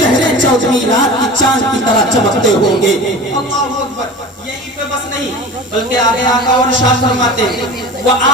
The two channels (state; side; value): normal; both; correlation 0.36